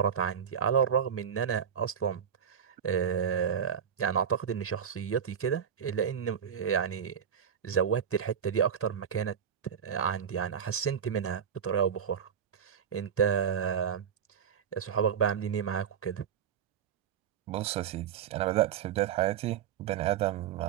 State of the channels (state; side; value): quieter; left; 8.0 dB